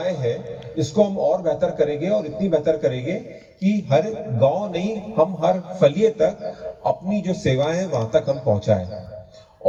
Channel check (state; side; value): identical; both; correlation 1.00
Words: हैं इसको हम और बेहतर करेंगे, और इतनी बेहतर करेंगे कि हर गांव नहीं, हम हर फलिए तक अपनी जो सेवाएं हैं वहां तक हम पहुंचाएं।